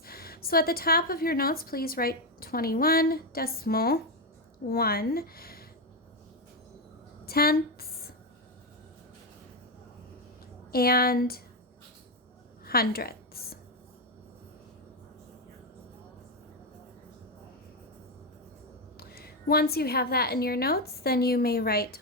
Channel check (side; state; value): both; normal; correlation 0.07